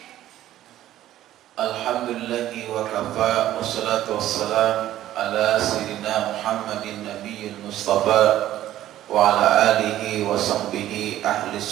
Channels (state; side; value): quieter; left; 13.2 dB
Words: Alhamdulillahi wa kafa, wassalatu wassalam ala sayyidina Muhammadin nabiyil mustafa wa ala alihi wa sahbihi ahli